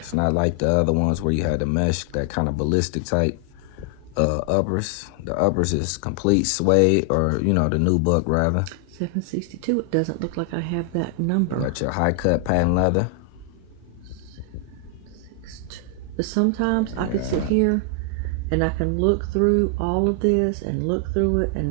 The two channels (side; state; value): both; different; correlation 0.00